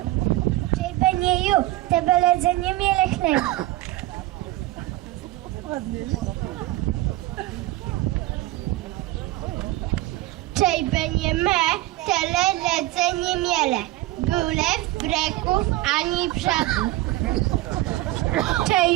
Čej benjeju, tebe ledzenje mijele hleb. Čej benje me, tele ledzenje miele. Byle w breków ani brzegu.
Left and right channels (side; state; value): left; quieter; 17.2 dB